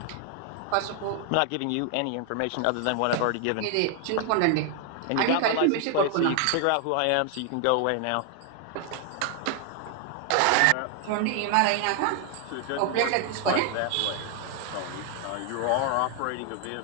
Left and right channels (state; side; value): different; both; correlation 0.00